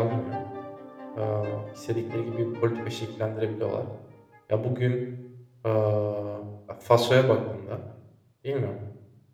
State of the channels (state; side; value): identical; both; correlation 1.00